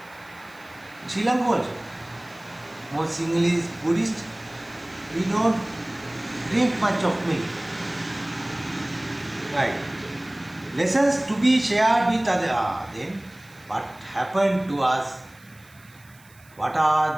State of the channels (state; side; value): noise; right; hiss, 27 dB below the sound